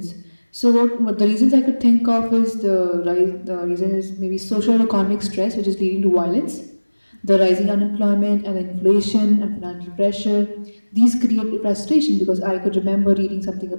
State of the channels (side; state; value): both; inverted; correlation -1.00